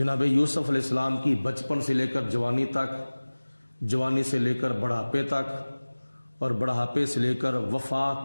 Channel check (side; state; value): both; inverted; correlation -1.00